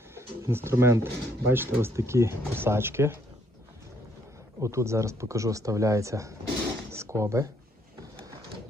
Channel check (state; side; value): normal; both; correlation 0.68